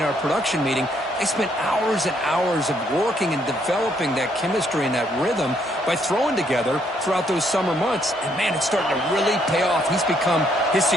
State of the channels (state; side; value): normal; both; correlation 0.70